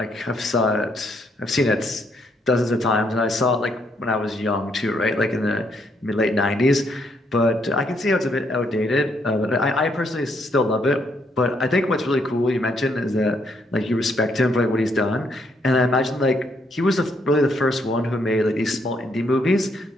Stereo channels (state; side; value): normal; both; correlation 0.73